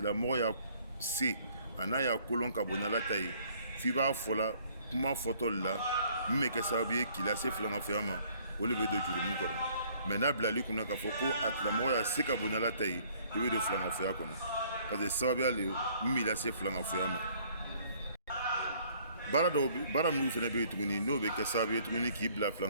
y'a se a n'a y'a kolon ka bon n'ala ta ye, f'i b'a fɔla kuma fɔtɔ de la min bɛ kɛ sababu ye k'i lase filankafoya ma, o de bɛ don jurumu kɔnɔ. Mais n'a bilali kunna k'a fɔ ko a tigilamɔgɔ y'a se ka bon n'ala ta ye, i bɛ don filankafoya kɔnɔ parce que sababuya le min b'i lase filankafoya ma. bara minnu fana bɛ yen tuguni n'o bɛ kɛ sababu ye tuguni k'i bila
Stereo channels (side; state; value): both; inverted; correlation -0.60